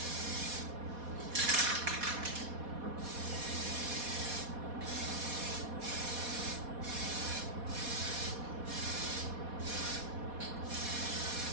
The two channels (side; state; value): left; late; 4.1 ms